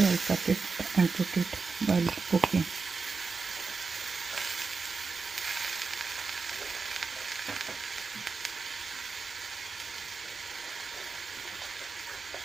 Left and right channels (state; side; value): quieter; left; 4.6 dB